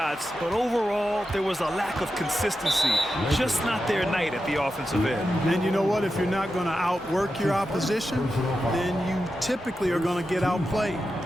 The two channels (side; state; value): both; normal; correlation 0.90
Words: but overall, there was a lack of consistency. Just not their night at the offensive end. And you know what? If you're not going to outwork your opposition, then you typically are going to get outplayed.